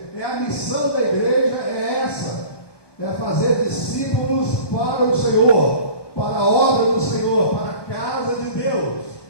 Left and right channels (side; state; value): right; late; 1.2 ms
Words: É a missão da igreja, é essa. É fazer discípulos para o Senhor, para a obra do Senhor, para a casa de Deus.